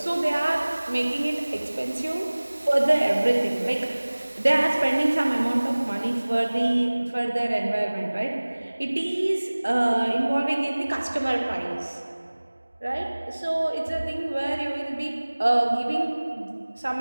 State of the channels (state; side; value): inverted; both; correlation -1.00